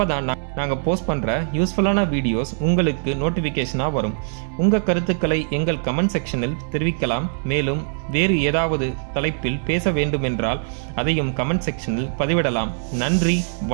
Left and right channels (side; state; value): left; silent; digital silence